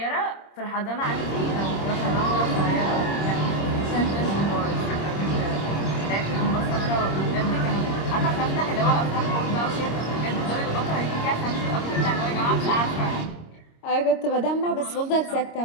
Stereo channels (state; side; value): late; right; 26 ms